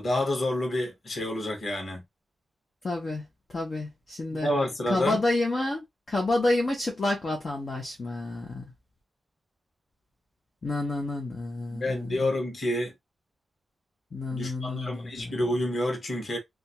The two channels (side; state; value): both; normal; correlation 0.89